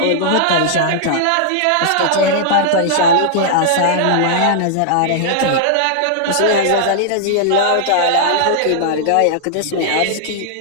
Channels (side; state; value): both; different; correlation -0.01